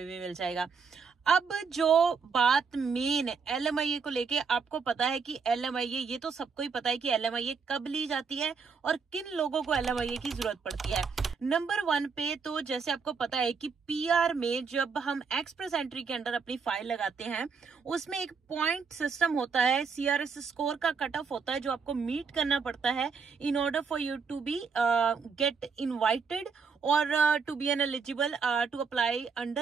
भी मिल जाएगा। अब जो बात मेन LMIA को लेके, आपको पता है कि LMIA, ये तो सबको ही पता है कि LMIA कब ली जाती है और किन लोगों को LMIA की जरूरत पड़ती है। नंबर 1 पे तो जैसे आपको पता है कि PR में जब हम एक्सप्रेस एंट्री के अंडर अपनी फाइल लगाते हैं, उसमें एक पॉइंट सिस्टम होता है, CRS स्कोर का कट ऑफ होता है, जो आपको मीट करना पड़ता है in order for you to be get invited और to be an eligible to apply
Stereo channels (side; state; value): left; quieter; 5.5 dB